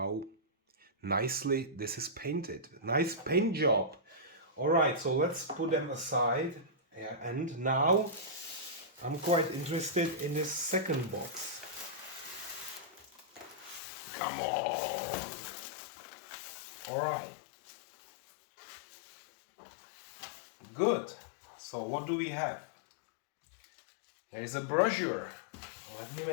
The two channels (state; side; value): drops out; right; at 13.8 s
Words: nicely this is painted. Nice paint job. All right, so let's put them aside. Yeah, and now I'm quite interested in this second box. Come on. All right. Good. So what do we have? There is a brochure. Let me